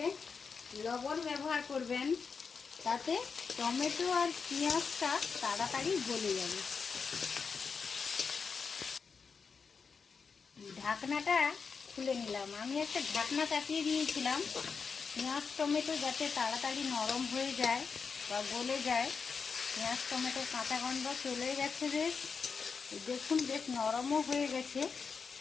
লবণ ব্যবহার করবেন, তাতে টমেটো আর পেঁয়াজটা তাড়াতাড়ি গলে যাবে। ঢাকনাটা খুলে নিলাম। আমি একটা ঢাকনা চাপিয়ে দিয়েছিলাম পেঁয়াজ টমেটো যাতে তাড়াতাড়ি নরম হয়ে যায় বা গলে যায়। পেঁয়াজ টমেটোর কাঁচা গন্ধ চলে গেছে বেশ। দেখুন বেশ নরমও হয়ে গেছে।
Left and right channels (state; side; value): quieter; right; 5.4 dB